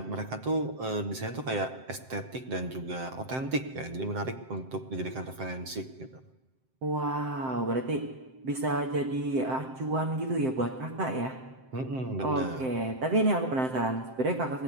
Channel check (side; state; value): left; late; 7.7 ms